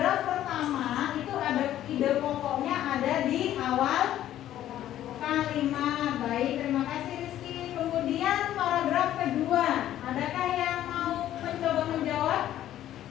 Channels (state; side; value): quieter; right; 12.4 dB